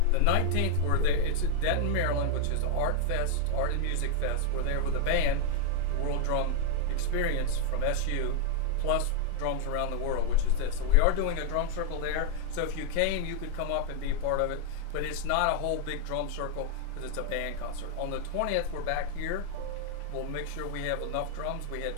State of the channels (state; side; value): different; both; correlation 0.01